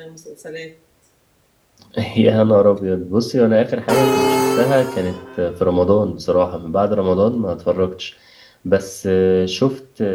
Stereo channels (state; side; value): identical; both; correlation 1.00